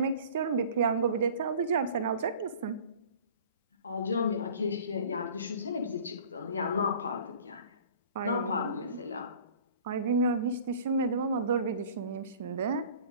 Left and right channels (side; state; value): both; inverted; correlation -0.46